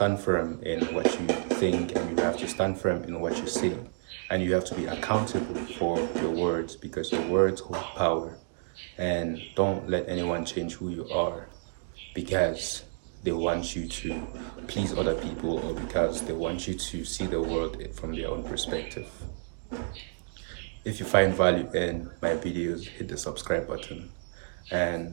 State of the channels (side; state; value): left; silent; digital silence